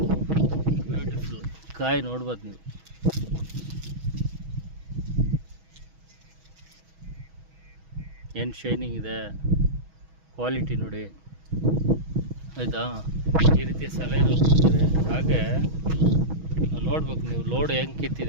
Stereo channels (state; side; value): late; left; 6.2 ms